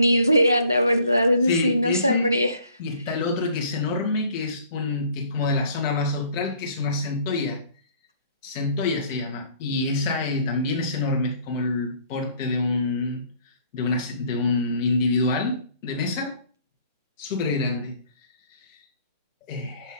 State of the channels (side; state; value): both; inverted; correlation -0.57